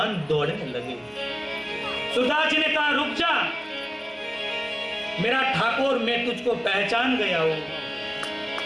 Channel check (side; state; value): both; identical; correlation 1.00